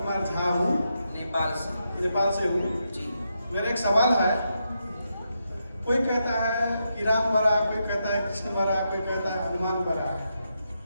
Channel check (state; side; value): inverted; both; correlation -0.83